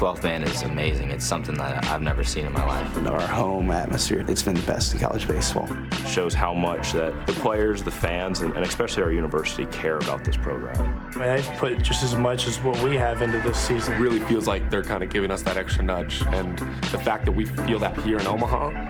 man is amazing. It's something that I've never seen in my life. Our home atmosphere, it's been the best in college baseball. Shows how much that the players, the fans, and especially our university care about this program. I mean, they've put just as much as what we have into this season. It really feels like they're kind of giving us that extra nudge, and the fact that we feel that here in Omaha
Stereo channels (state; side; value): identical; both; correlation 1.00